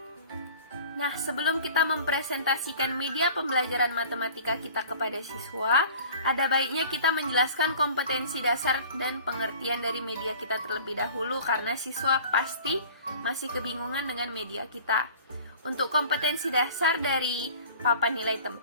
Nah, sebelum kita mempresentasikan media pembelajaran matematika kita kepada siswa, ada baiknya kita menjelaskan kompetensi dasar dan pengertian dari media kita terlebih dahulu, karena siswa pasti masih kebingungan dengan media kita. Untuk kompetensi dasar dari papan nilai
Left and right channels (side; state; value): both; inverted; correlation -0.45